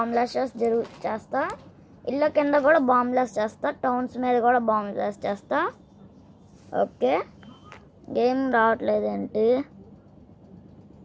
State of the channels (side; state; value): both; identical; correlation 1.00